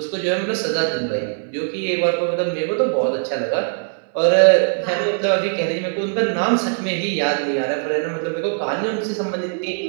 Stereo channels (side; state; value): left; silent; 63 dB below the other